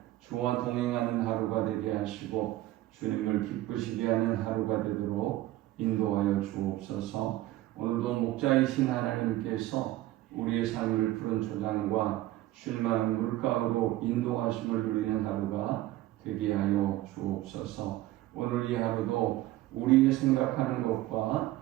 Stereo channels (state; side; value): quieter; left; 16.2 dB